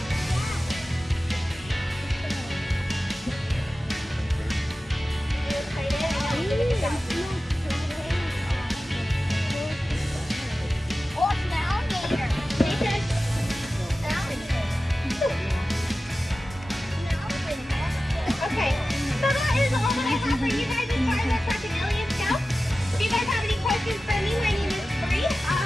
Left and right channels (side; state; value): both; normal; correlation 0.95